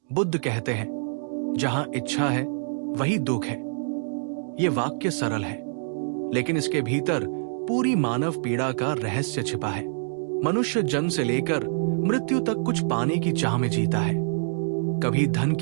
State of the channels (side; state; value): left; silent; digital silence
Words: बुद्ध कहते हैं, जहां इच्छा है वही दुख है। ये वाक्य सरल है, लेकिन इसके भीतर पूरी मानव पीड़ा का रहस्य छिपा है। मनुष्य जन्म से लेकर मृत्यु तक कुछ पाने की चाह में जीता है, कभी धन